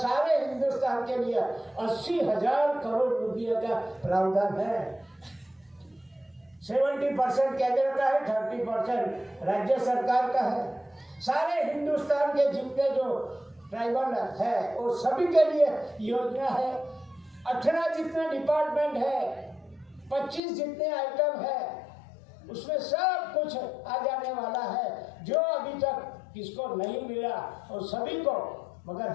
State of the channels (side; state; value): right; drops out; at 20.4 s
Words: हिंदुस्तान के लिए 80,000 करोड़ रुपये का प्रावधान है। 70% केंद्र का है, 30% राज्य सरकार का है। सारे हिंदुस्तान के जितने जो ट्राइबल है वो सभी के लिए योजना है। 18 जितने डिपार्टमेंट है, 25 जितने आइटम है, उसमें सब कुछ आ जाने वाला है, जो अभी तक किसको नहीं मिला और सभी को। मगर